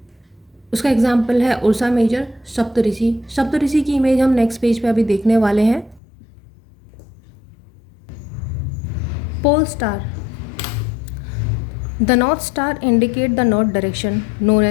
उसका एग्जाम्पल है उर्सा मेजर, सप्तऋषि। सप्तऋषि की इमेज हम नेक्स्ट पेज पे अभी देखने वाले हैं। Pole star, the north star indicate the north direction known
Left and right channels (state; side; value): drops out; right; at 6.0 s